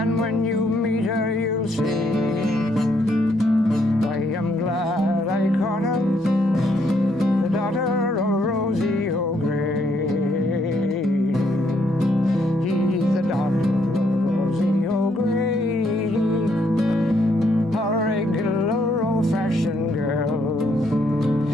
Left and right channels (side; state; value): both; normal; correlation 0.72